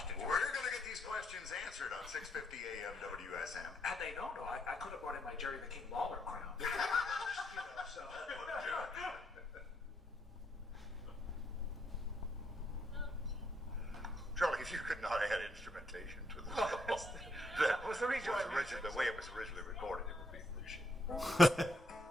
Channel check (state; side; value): normal; both; correlation 0.75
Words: We're going to get these questions answered on 650 AM WSM. Had they known, though, I could have brought in my Jerry the King Lawler crown. So. Charlie, if you could not add instrumentation to the that was the way it was originally recorded, it would be appreciated.